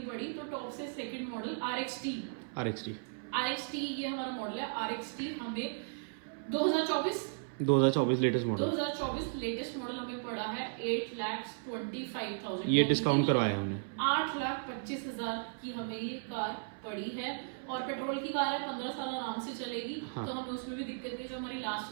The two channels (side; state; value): left; silent; 54 dB below the other